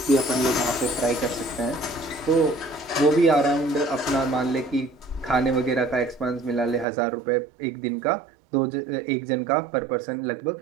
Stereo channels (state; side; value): drops out; left; at 6.9 s